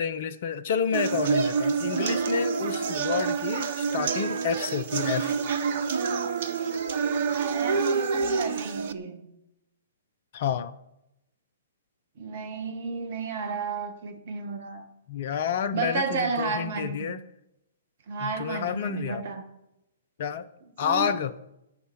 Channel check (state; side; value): inverted; both; correlation -0.52